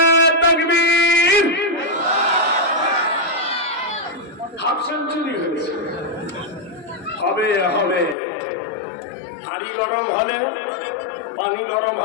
তাকবীর। হাফ সেঞ্চুরি হয়েছে। হবে হবে। হাড়ি গরম হলে পানি গরম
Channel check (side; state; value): right; drops out; at 8.2 s